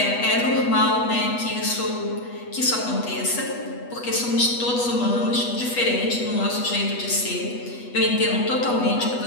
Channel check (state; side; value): late; right; 8.2 ms